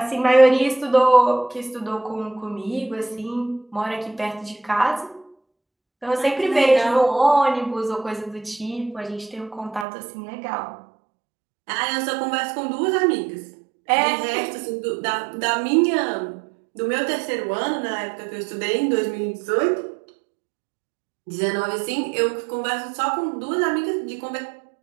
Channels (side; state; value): left; drops out; at 9.9 s